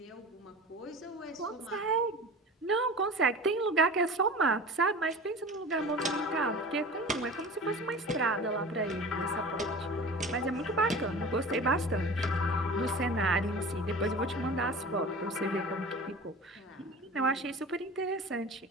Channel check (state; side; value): normal; both; correlation 0.37